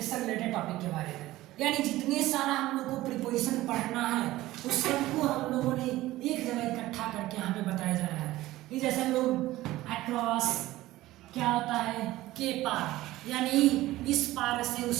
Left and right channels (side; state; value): left; quieter; 16.7 dB